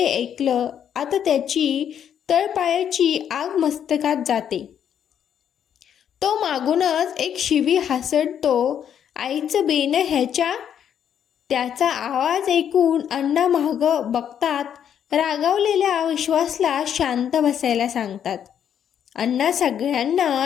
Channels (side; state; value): right; quieter; 9.0 dB